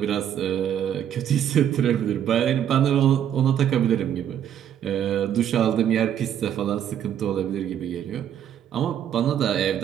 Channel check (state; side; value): quieter; left; 9.8 dB